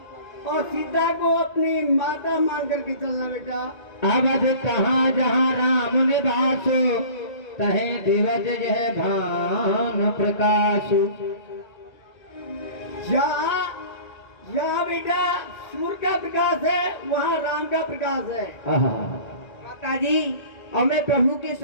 सीता को अपनी माता मान करके चलना। बेटा, अवध कहाँ जहाँ राम निवास, तहे दिवज जह भान प्रकाश। जहाँ बेटा सूर्य का प्रकाश है, वहाँ राम का प्रकाश है। माता जी, अब मैं प्रभु के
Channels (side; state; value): right; late; 1.8 ms